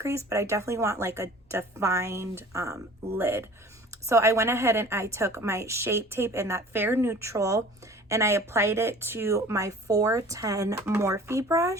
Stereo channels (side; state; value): both; normal; correlation 0.45